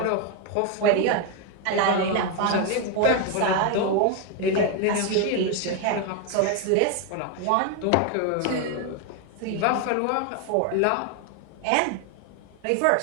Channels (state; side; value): different; both; correlation 0.01